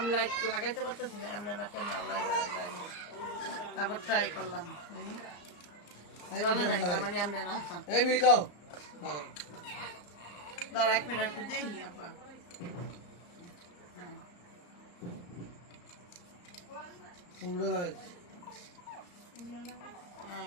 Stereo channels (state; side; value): late; right; 34 ms